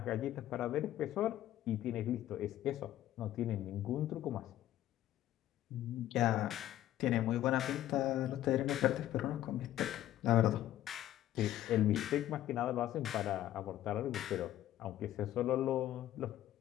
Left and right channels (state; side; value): quieter; right; 13.1 dB